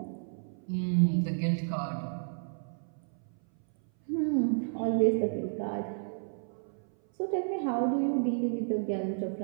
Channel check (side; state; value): left; silent; 57 dB below the other